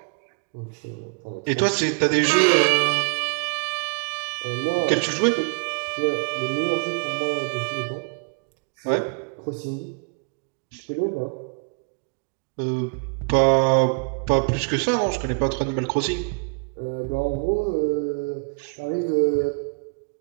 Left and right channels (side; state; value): left; quieter; 37.9 dB